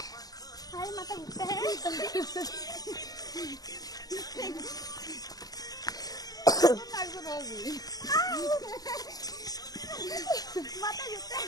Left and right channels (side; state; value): right; late; 0.18 ms